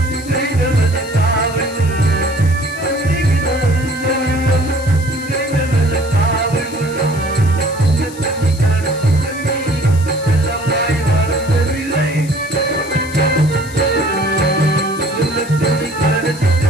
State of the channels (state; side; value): noise; left; hiss, 17 dB below the sound